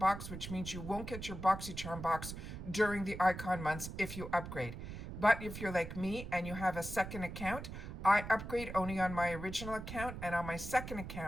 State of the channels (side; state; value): right; noise; rumble, 8 dB below the sound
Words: which means you won't get your BoxyCharm box during the icon months if you upgrade. But if you're like me and you have a second account, I upgrade only on my original account, and on my second